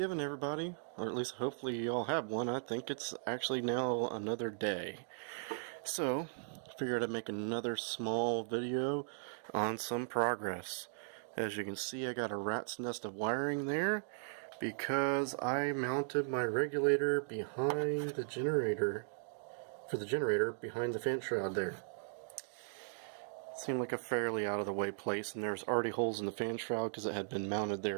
everybody. Or at least hopefully you all have one. I think it's actually now another day. So, figured I'd make another small video on some progress. As you can see, I got a rat's nest of wiring there because I mounted my regulator behind the generator, behind the fan shroud there. Seemed like a fairly out of the way place, and there's already holes in the fan shroud because it had been mounted there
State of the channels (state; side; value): silent; left; digital silence